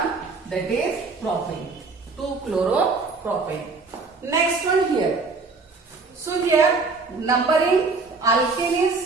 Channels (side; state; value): left; quieter; 4.1 dB